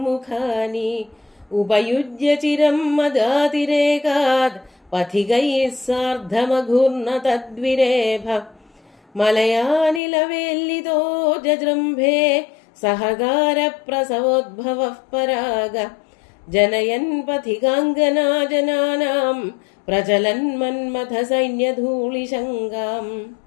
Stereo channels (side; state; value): right; drops out; at 10.0 s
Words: ഉപയുജ്യ ചിരം മദാതിരേകാത് പഥികൈഃ സാർദ്ധമഘൂർണ തദ്വിരേഭ മലയാനിലവേല്ലിതോ ജജൃംഭേ സഹകാര പ്രസവോദ്ഭവഃ പരാഗ ജനയൻ പഥികാംഗനാ ജനാനാം പ്രചലൻ മന്മഥ സൈന്യധൂളിശങ്കാം.